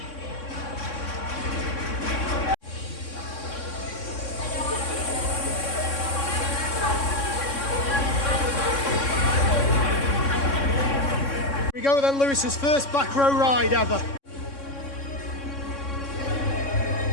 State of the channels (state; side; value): late; right; 3.6 ms